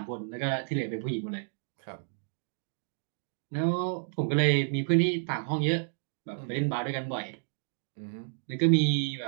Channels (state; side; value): silent; left; digital silence